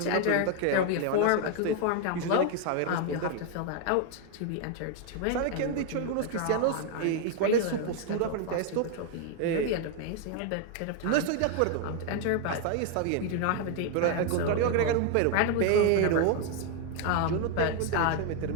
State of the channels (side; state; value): both; different; correlation 0.01